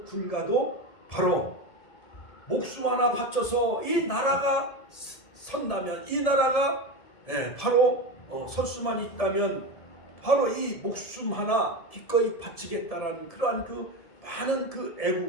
군가도 바로 목숨 하나 바쳐서 이 나라가 선다면 이 나라가 바로 설 수만 있다면 바로 이 목숨 하나 기꺼이 바치겠다라는 그러한 그 많은 그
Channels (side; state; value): right; late; 1.7 ms